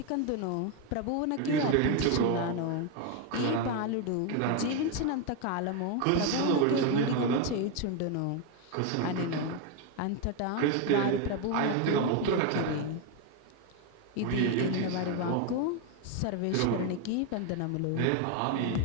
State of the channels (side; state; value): both; different; correlation 0.02